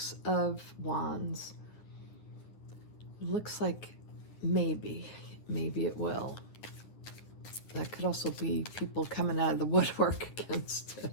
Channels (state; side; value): late; right; 9.5 ms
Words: of Wands looks like maybe it will. That could also be people coming out of the woodwork against